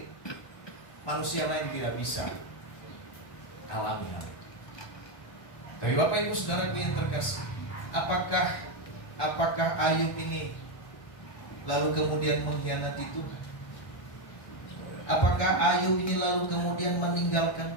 manusia lain tidak bisa alami hal itu. Tapi Bapak Ibu Saudara yang terkasih, apakah Ayub ini lalu kemudian mengkhianati Tuhan? Apakah Ayub ini lalu kemudian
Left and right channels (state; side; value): late; right; 1.4 ms